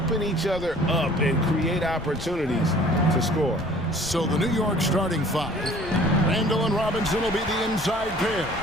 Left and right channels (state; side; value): noise; left; rumble, 15 dB below the sound